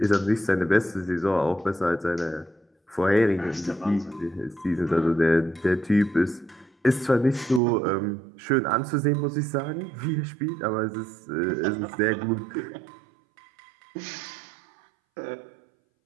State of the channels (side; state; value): left; drops out; at 7.6 s